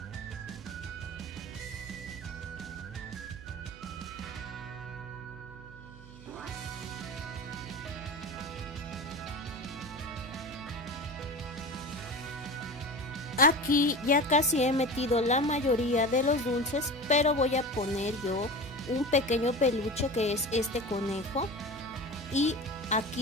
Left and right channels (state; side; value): noise; right; hum, 18 dB below the sound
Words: Aquí ya casi he metido la mayoría de los dulces, pero voy a poner yo un pequeño peluche que es este conejo y